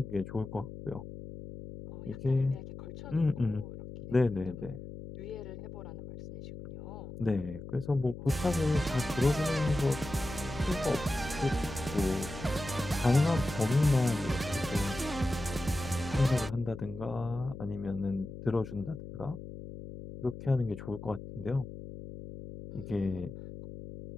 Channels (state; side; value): noise; left; hum, 11 dB below the sound